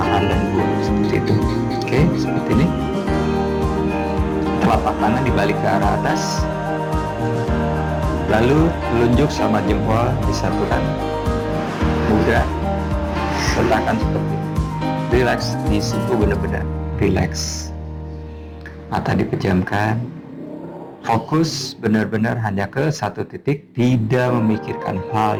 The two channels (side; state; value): both; identical; correlation 1.00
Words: dan buang, seperti itu. Oke, seperti ini. Telapak tangan dibalik ke arah atas, lalu telunjuk sama jempol disatukan, mudah, letakkan seperti ini. Relax, disitu benar-benar relax. Mata dipejamkan, fokus benar-benar hanya ke satu titik, tidak memikirkan hal